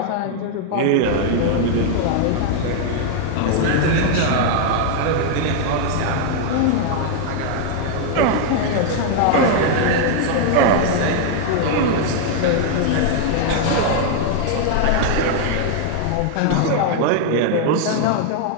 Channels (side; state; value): both; different; correlation 0.00